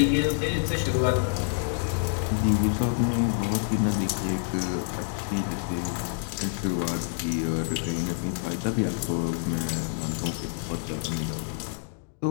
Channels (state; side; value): silent; right; digital silence